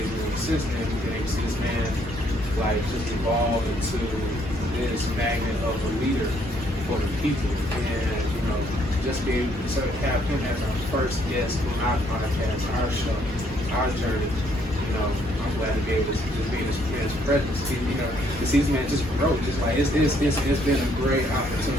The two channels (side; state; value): both; normal; correlation 0.68